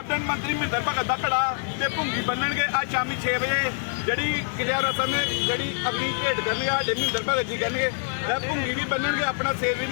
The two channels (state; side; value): silent; right; digital silence